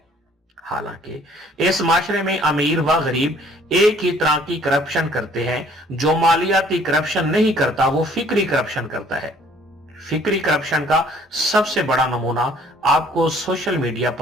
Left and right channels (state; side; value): normal; both; correlation 0.58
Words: हालांकि इस माशरे में अमीर व गरीब एक ही तरह की करप्शन करते हैं। जो मालियाती करप्शन नहीं करता वो फिक्री करप्शन करता है। फिक्री करप्शन का सबसे बड़ा नमूना आपको सोशल मीडिया